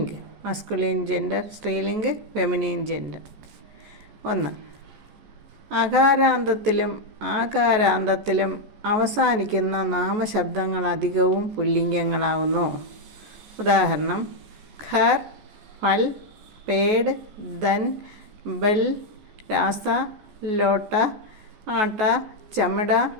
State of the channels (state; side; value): late; left; 14 ms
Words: മസ്കുലിൻ ജെൻഡർ, സ്ത്രീലിംഗ് ഫെമിനിൻ ജെൻഡർ. 1. അകാരാന്തത്തിലും ആകാരാന്തത്തിലും അവസാനിക്കുന്ന നാമശബ്ദങ്ങൾ അധികവും പുല്ലിംഗങ്ങളാകുന്നു. ഉദാഹരണം: ഘർ, ഫൽ, പേട്, ധൻ, ബൽ, രാസ, ലോട്ട, ആട്ട, ചമട,